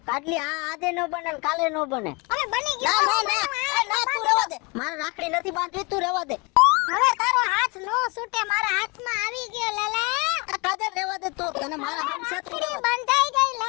કાટલી આ આજે ન બને ને કાલે ન બને. હવે બની ગયો ના તું રહેવા દે. મારે રાખડી નથી બાંધવી, તું રહેવા દે. હવે તારો હાથ નો છૂટે મારા હાથમાં આવી ગયો લાલા કાજલ રહેવા દે તું, તને મારા હાથ સાથે રાખડી બંધાઈ ગઈ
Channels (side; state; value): right; quieter; 28.6 dB